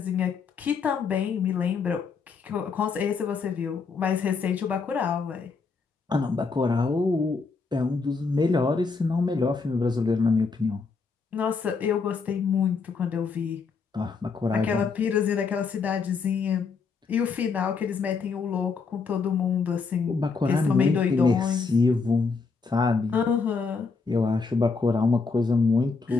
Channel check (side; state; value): right; quieter; 4.8 dB